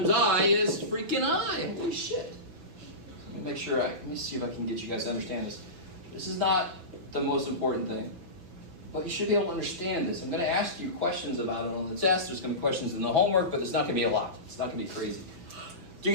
I is freaking I. Holy shit. Let me make sure let me see if I can get you guys to understand this. This is not the most important thing. But you should be able to understand this. I'm going to ask you questions about it on the test. There's going to be questions in the homework, but it's not going to be a lot. It's not going to be crazy. Do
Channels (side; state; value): left; late; 5.7 ms